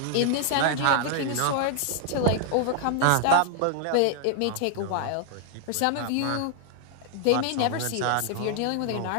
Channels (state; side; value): different; both; correlation 0.00